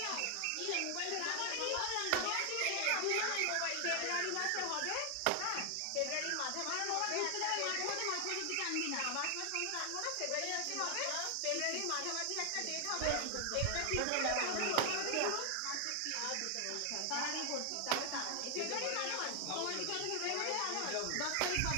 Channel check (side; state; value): both; different; correlation 0.00